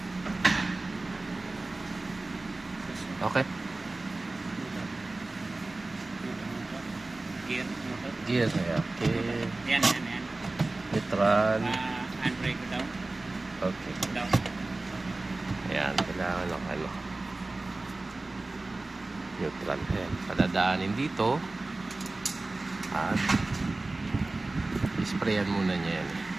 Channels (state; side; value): quieter; left; 3.1 dB